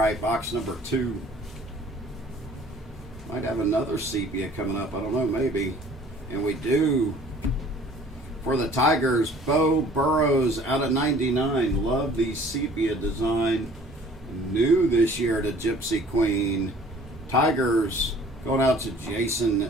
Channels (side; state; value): both; normal; correlation 0.52